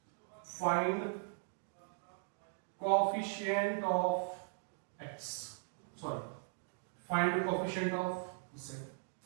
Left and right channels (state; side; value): silent; left; digital silence